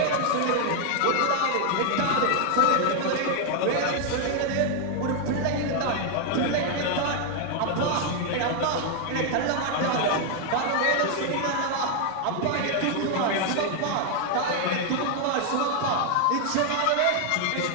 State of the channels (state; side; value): different; both; correlation 0.00